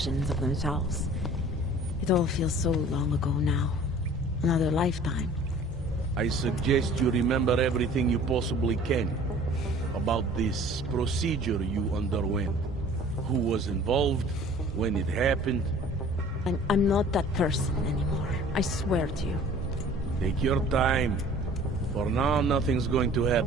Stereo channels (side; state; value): both; normal; correlation 0.49